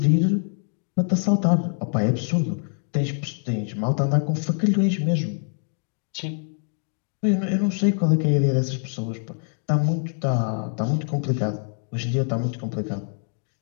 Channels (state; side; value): silent; right; 55 dB below the other